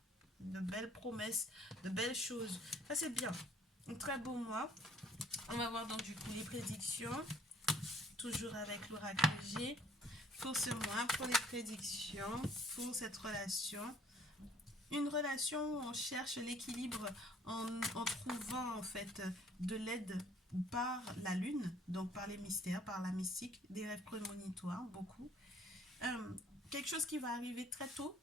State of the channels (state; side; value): normal; both; correlation 0.58